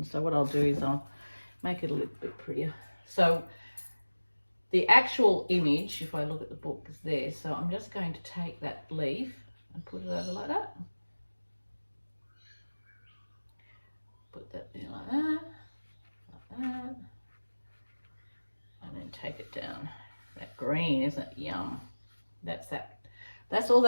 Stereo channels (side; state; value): both; inverted; correlation -1.00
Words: so what I'll do is I'll make it a little bit prettier. So the actual image, if I look at the book, is there. So I'm just going to take that leaf and put it over like that. Put that there like that. And then take it down. That green, isn't it? Yum. That's that. That's all